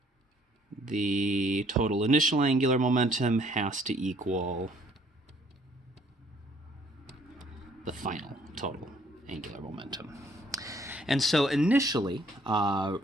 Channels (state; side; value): normal; both; correlation 0.62